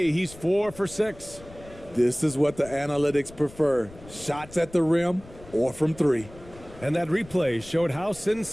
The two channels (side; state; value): left; noise; rumble, 19 dB below the sound